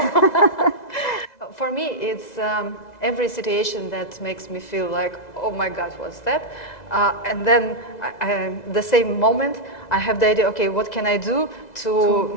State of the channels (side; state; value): right; late; 2.0 ms